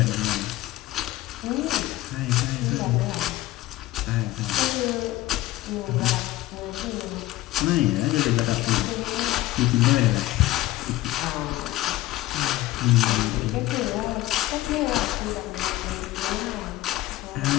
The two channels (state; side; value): quieter; right; 16.6 dB